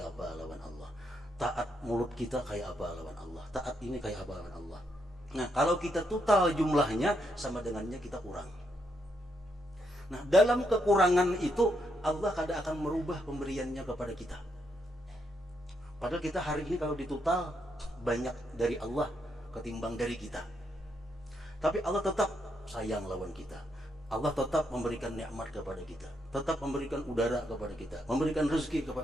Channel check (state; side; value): normal; both; correlation 0.78